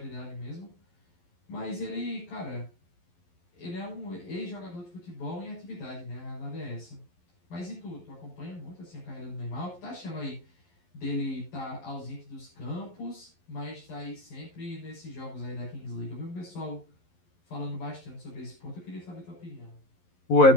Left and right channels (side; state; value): right; late; 11 ms